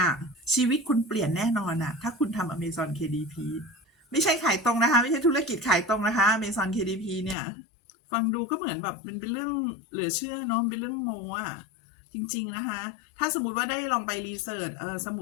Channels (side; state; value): right; drops out; at 7.4 s